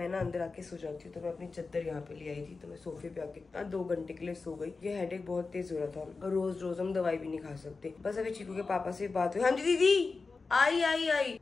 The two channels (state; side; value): quieter; right; 4.2 dB